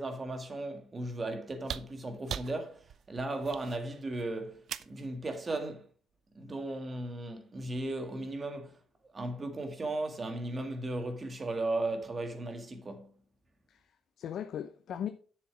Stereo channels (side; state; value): both; normal; correlation 0.84